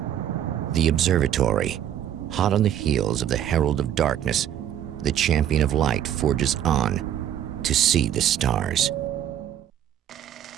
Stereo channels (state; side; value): quieter; left; 10.6 dB